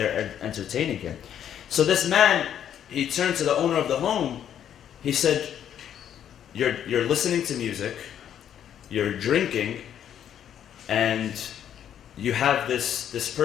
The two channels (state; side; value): quieter; right; 9.8 dB